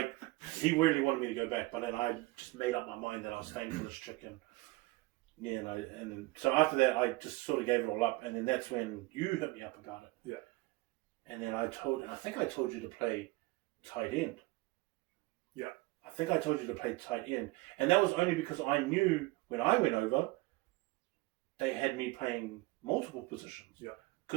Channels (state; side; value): quieter; left; 21.6 dB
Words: he really wanted me to go back. But then I just made up my mind that I was staying for this chick, and so after that I just sort of gave it all up, and then that's when you hit me up about it. Yeah. And then I think I told you to play tight end. Yeah. I think I told you to play tight end. And that was only because I knew when I went over, they had me playing multiple positions. Yeah.